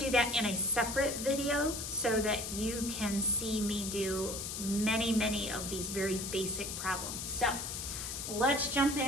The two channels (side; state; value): left; noise; hiss, 5 dB below the sound